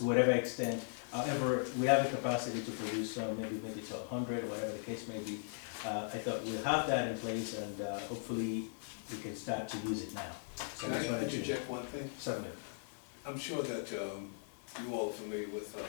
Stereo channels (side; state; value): right; silent; 52 dB below the other